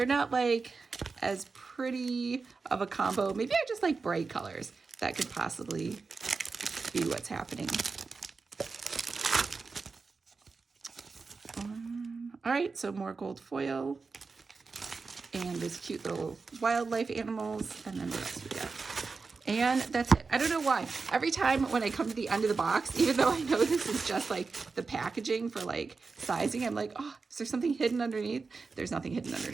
not like as pretty of a combo. Maybe I just like bright colors. That could possibly be what's happening. All right, so more gold foil. And these cute little wildlife animals. And then what else we got? And that's it. I don't know why. Every time when I come to the end of the box, even though I know this is just like the packaging for like sizing, I'm like, oh, is there something hidden underneath? There's nothing hidden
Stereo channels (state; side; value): quieter; left; 4.4 dB